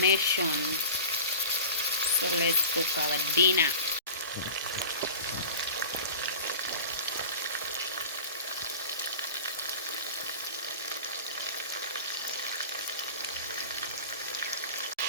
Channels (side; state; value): both; inverted; correlation -0.36